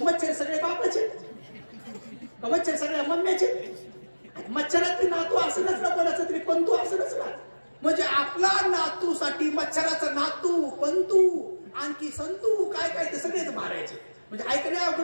सगळे बापाचे, मच्छर सगळ्या मम्म्याचे, मच्छरात बी नातू असणच ना कोणाचं तरी, पंतू असणच ना. म्हणजे आपला नातूसाठी मच्छराचं नातू, पंतू, आणखी संतू, काय ते सगळेच मारायचे. म्हणजे ऐकणे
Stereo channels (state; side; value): inverted; both; correlation -1.00